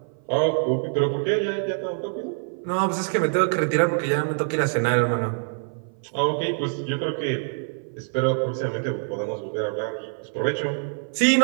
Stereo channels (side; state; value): left; silent; 57 dB below the other